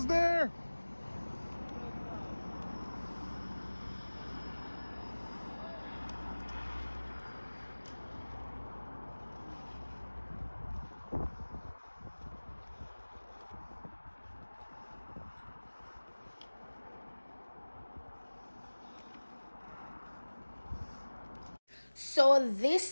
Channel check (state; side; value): inverted; both; correlation -1.00